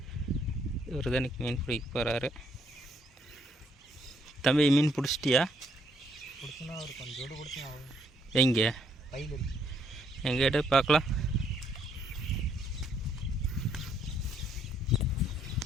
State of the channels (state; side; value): normal; both; correlation 0.70